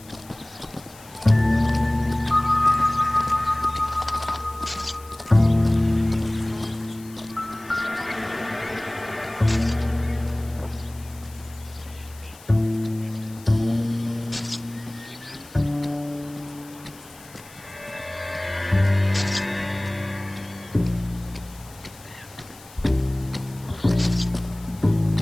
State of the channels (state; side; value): noise; left; hiss, 22 dB below the sound